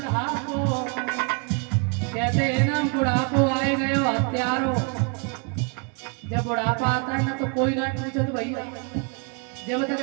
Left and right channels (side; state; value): left; quieter; 35.7 dB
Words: कहते हैं ना, बुढ़ापो आए गए हो हत्यारो। जब बुढ़ापा आता है ना तो कोई ना पूछो तो भैया, जब तक